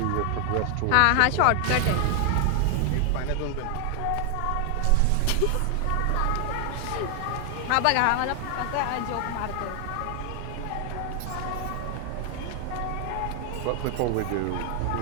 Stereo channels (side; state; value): both; different; correlation 0.00